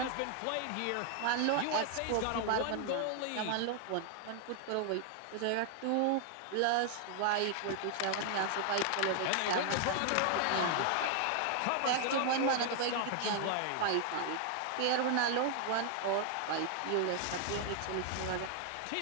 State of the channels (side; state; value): both; different; correlation 0.00